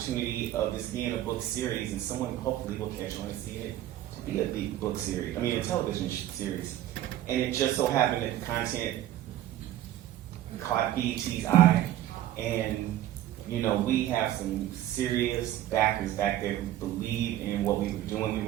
of this being a book series and someone hopefully will catch on and see it to be a book series, a television series. And it just so happened that the content caught BET's eye and we have some serious backers back there who believe in what we were doing. We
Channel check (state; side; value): quieter; left; 13.1 dB